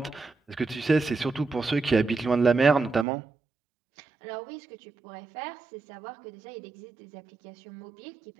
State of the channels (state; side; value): drops out; left; at 3.1 s